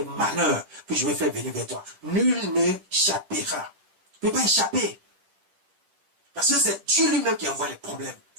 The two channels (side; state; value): left; late; 10 ms